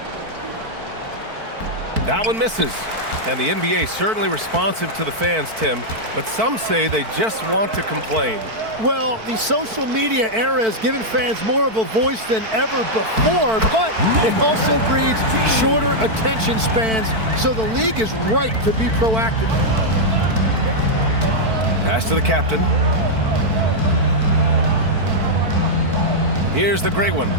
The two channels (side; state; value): left; late; 4.5 ms